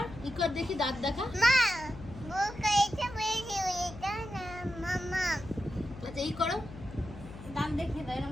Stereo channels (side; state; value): left; noise; hum, 14 dB below the sound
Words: ইকার দেখি, দাঁত দেখা। মা মুখ এটা বেশি এটা না মামা। আচ্ছা এই করো, দাঁত দেখিয়ে দাও